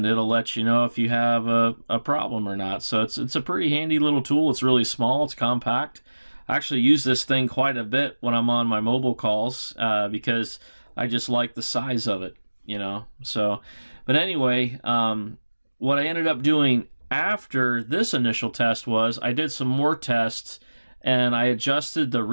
it'll let you know if you have a problem or not. So it's a pretty handy little tool. It's really small. It's compact. I actually use this thing quite a bit when I'm on my mobile calls because I just like the size of it, So, but anyway, what I ended up doing after this initial test was I did some more tests, and I adjusted the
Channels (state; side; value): inverted; both; correlation -1.00